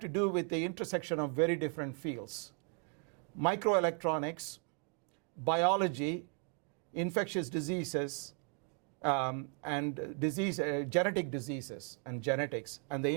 do with the intersection of very different fields: microelectronics, biology, infectious diseases, and genetic diseases and genetics and the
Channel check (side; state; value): left; quieter; 38.8 dB